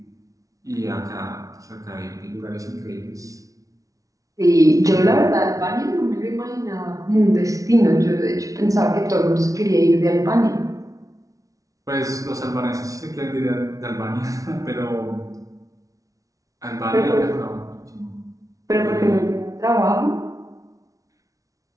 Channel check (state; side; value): late; left; 0.17 ms